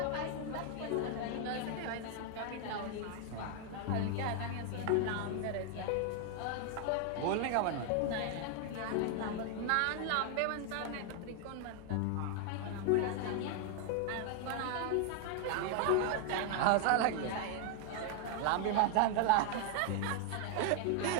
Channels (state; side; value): different; both; correlation 0.00